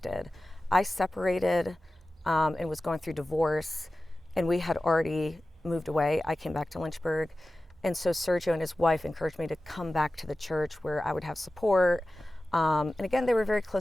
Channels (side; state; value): both; normal; correlation 0.95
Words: I separated and was going through divorce, and we had already moved away. I came back to Lynchburg. And so Sergio and his wife encouraged me to come back to the church where I would have support. And again, they were very